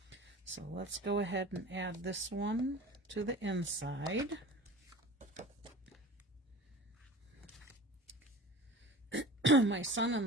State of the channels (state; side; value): normal; both; correlation 0.39